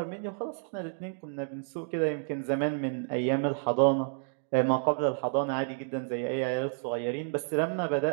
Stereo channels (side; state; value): left; silent; 58 dB below the other